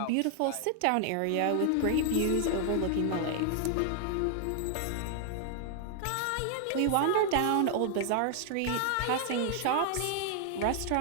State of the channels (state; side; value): different; both; correlation 0.00